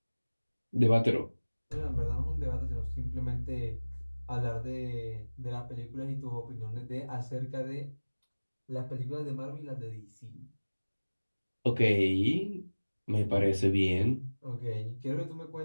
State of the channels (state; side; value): inverted; both; correlation -1.00